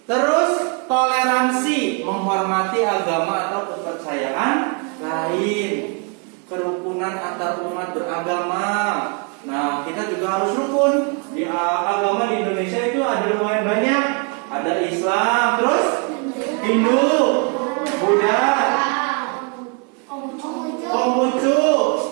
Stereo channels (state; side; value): quieter; left; 36.2 dB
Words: Terus toleransi, menghormati agama atau kepercayaan lain. Kerukunan antar umat beragama. Nah, kita juga harus rukun. Di agama di Indonesia itu ada lumayan banyak. Ada Islam, terus Hindu, Buddha, Konghucu,